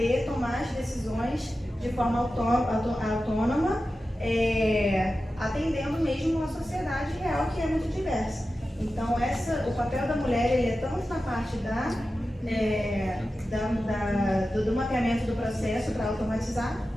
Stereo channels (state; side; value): normal; both; correlation 0.93